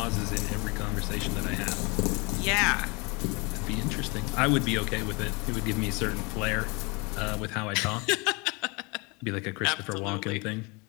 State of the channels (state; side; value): quieter; right; 28.5 dB